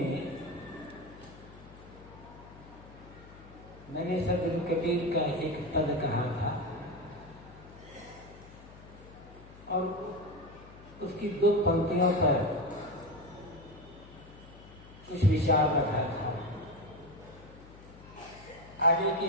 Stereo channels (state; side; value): noise; left; hum, 19 dB below the sound